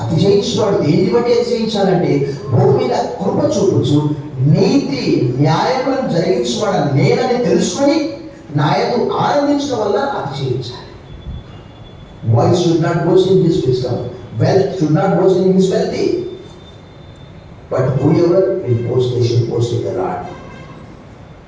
అతిశయించేవాడు. దేన్ని బట్టి అతిశయించాలంటే భూమి మీద కృప చూపుచు నీతి న్యాయములను జరిగించేవాడు నేనని తెలుసుకొని నాయకు ఆనందించడం వల్ల అతిశయించాలి. Wise should not boast in his wisdom. Wealth should not boast in his wealthy. But whoever will boast, they should boast in the Lord.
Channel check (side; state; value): both; identical; correlation 1.00